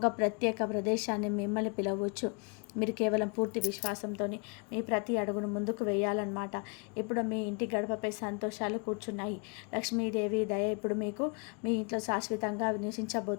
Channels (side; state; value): right; quieter; 35.0 dB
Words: ప్రత్యేక ప్రదేశాన్ని మిమ్మల్ని పిలవచ్చు. మీరు కేవలం పూర్తి విశ్వాసంతో మీ ప్రతి అడుగును ముందుకు వేయాలన్నమాట. ఇప్పుడు మీ ఇంటి గడపపై సంతోషాలు కూర్చున్నాయి. లక్ష్మీదేవి దయ ఇప్పుడు మీకు మీ ఇంట్లో శాశ్వతంగా